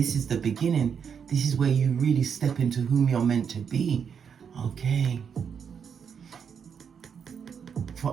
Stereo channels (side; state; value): left; quieter; 7.1 dB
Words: is the beginning. This is where you really step into whom you're meant to be. Okay.